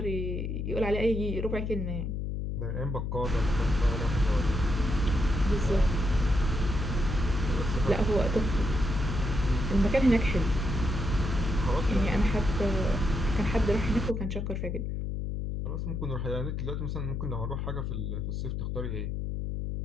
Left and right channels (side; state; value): left; noise; hum, 2 dB below the sound